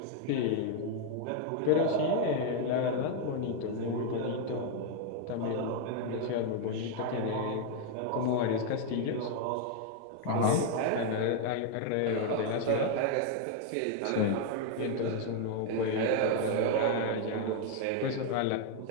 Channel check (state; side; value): different; both; correlation 0.00